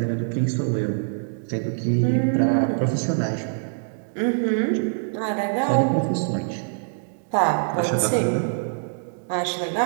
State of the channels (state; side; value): silent; left; digital silence